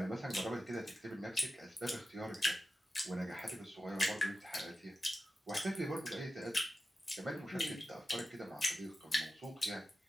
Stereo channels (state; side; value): normal; both; correlation 0.92